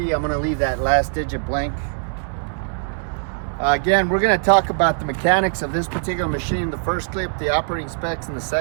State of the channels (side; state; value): left; silent; digital silence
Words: I'm going to leave that last digit blank. Again, we're going to talk about the mechanics of this particular machine in the first clip, the operating specs in the